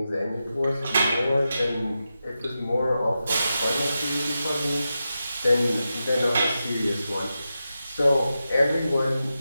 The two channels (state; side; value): inverted; both; correlation -0.90